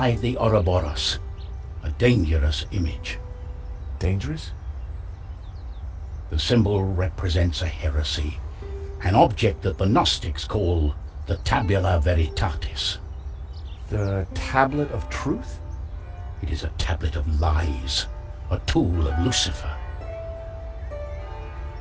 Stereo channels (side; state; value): both; identical; correlation 1.00